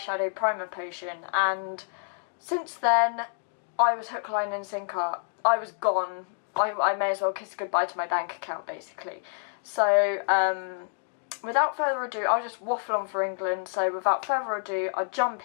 primer potion, and since then I was hook, line and sinker. I was gone. I may as well kiss goodbye to my bank account basically. So without further ado, I'll just waffle on for England. So without further ado, I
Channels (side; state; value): right; silent; digital silence